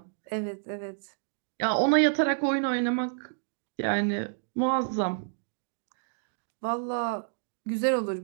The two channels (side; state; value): left; silent; digital silence